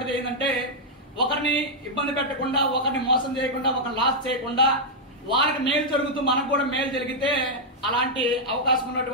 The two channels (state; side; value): normal; both; correlation -0.05